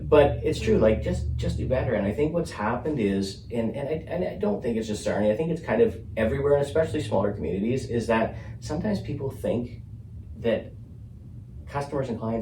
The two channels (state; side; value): identical; both; correlation 1.00